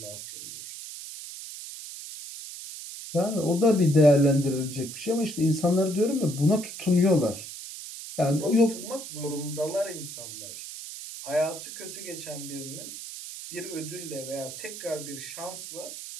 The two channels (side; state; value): right; noise; hiss, 11 dB below the sound